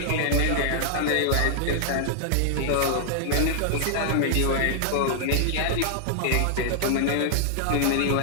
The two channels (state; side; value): different; both; correlation -0.01